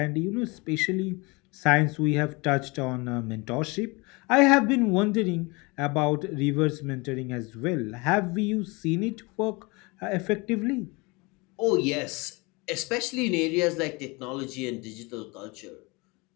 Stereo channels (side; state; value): right; quieter; 26.5 dB